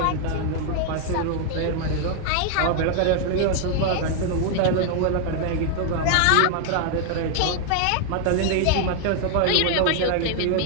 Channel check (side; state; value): both; different; correlation 0.00